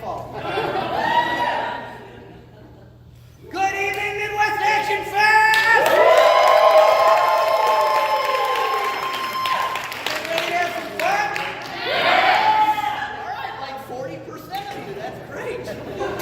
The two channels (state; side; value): identical; both; correlation 1.00